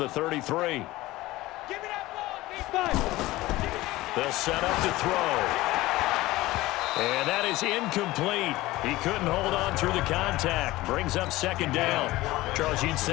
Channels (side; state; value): right; quieter; 18.2 dB